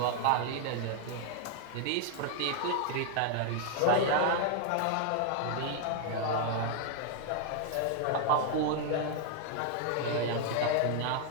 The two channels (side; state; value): both; different; correlation 0.00